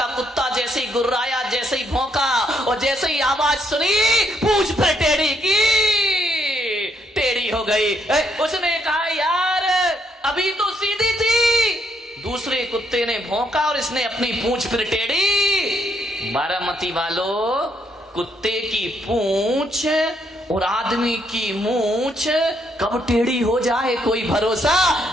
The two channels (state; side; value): normal; both; correlation 0.73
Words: कुत्ता जैसे ही गुर्राया, जैसे ही भौंका और जैसे ही आवाज सुनी, पूंछ फिर टेढ़ी की टेढ़ी हो गई। उसने कहा यार अभी तो सीधी थी। दूसरे कुत्ते ने भौंका और इसने अपनी पूंछ फिर टेढ़ी। बारामती वालों, कुत्ते की पूंछ और आदमी की मूंछ कब टेढ़ी हो जाए कोई भरोसा